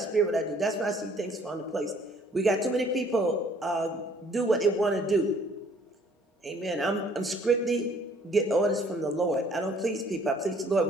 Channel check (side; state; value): both; normal; correlation 0.59